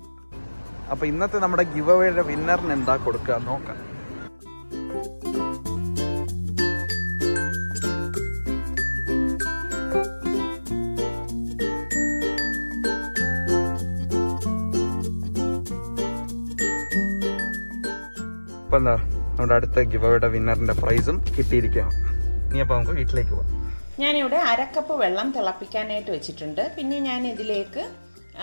അപ്പോൾ ഇന്നത്തെ നമ്മുടെ ഗിവ് അവേയുടെ വിന്നറിന് എന്താ കൊടുക്കുക നോക്കാം. ഇപ്പം എന്താ നമ്മുടെ അടുത്ത ഗിവ് അവേയുടെ വിന്നറിന്റെ പ്രൈസും കിട്ടിയിരിക്കുകയാണ്. ഇനി അപ്പോൾ നമുക്ക് വീട്ടിലേക്ക് പോവാം. ഞാനിവിടെ 1/2 കപ്പ് വെള്ളം തിളപ്പിക്കാനായിട്ട് വെച്ചിട്ടുണ്ട്. പിന്നെ ഞാൻ ഇതിലേക്ക്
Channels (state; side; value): inverted; both; correlation -1.00